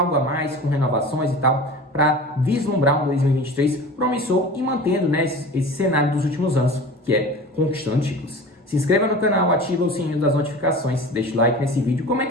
a mais, com renovações e tal, para vislumbrar um 2023 promissor e mantendo, né, esse cenário dos últimos anos, que é conquistando títulos. Se inscreva no canal, ativa o sininho das notificações, deixa o like nesse vídeo,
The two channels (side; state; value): both; normal; correlation 0.36